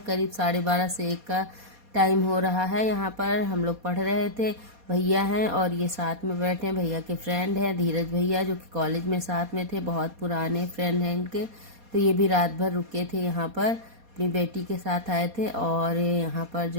करीब 12:30 से 1 का टाइम हो रहा है। यहाँ पर हम लोग पढ़ रहे थे, भैया हैं और ये साथ में बैठे हैं, भैया के फ्रेंड हैं धीरज भैया जो कि कॉलेज में साथ में थे, बहुत पुराने फ्रेंड हैं इनके। तो ये भी रात भर रुके थे यहाँ पर, अपनी बेटी के साथ आए थे। और यहाँ पर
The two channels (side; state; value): left; late; 4.2 ms